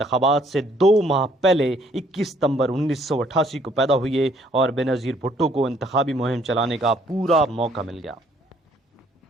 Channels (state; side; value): normal; both; correlation 0.64